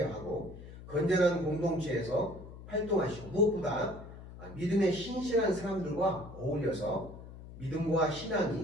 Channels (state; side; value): noise; left; hum, 15 dB below the sound